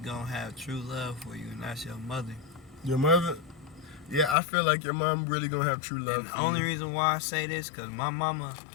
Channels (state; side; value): drops out; right; at 4.4 s